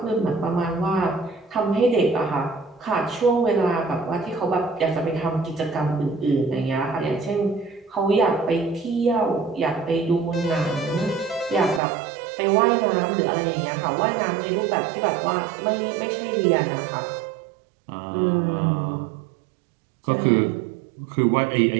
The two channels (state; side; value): drops out; left; at 11.8 s